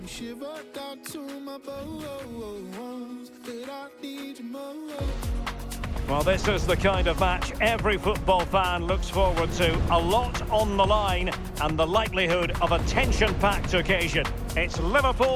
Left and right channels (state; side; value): identical; both; correlation 1.00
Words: shiver. Down to my bones, but I need you more. Well, this is the kind of match every football fan looks forward to. A lot on the line and the likelihood of a tension-packed occasion. It's